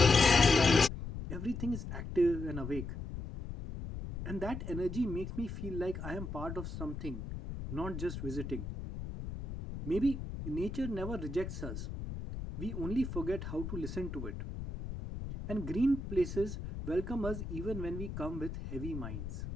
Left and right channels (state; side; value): noise; left; rumble, 7 dB below the sound